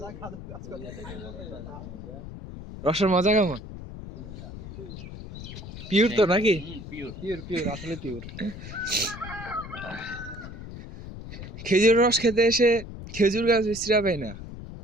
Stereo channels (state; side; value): noise; left; rumble, 11 dB below the sound